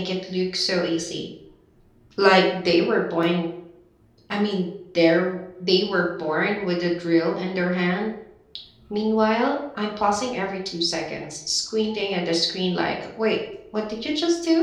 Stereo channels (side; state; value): both; identical; correlation 1.00